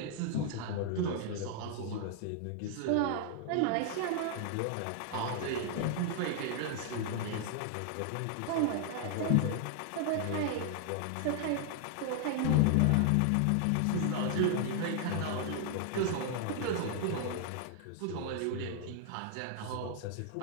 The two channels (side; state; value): both; different; correlation 0.00